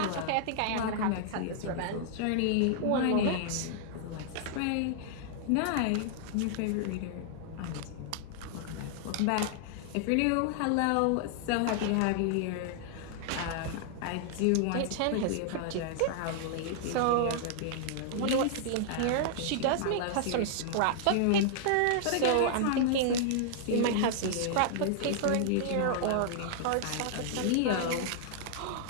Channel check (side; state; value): both; different; correlation -0.01